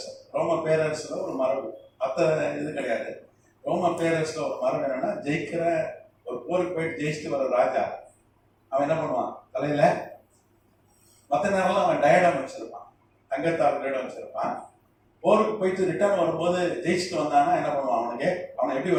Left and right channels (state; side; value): identical; both; correlation 1.00